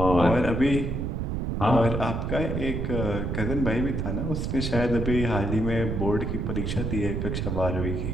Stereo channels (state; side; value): noise; right; rumble, 1 dB below the sound